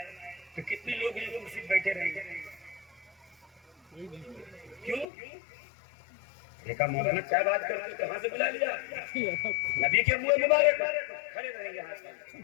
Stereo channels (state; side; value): drops out; right; at 5.1 s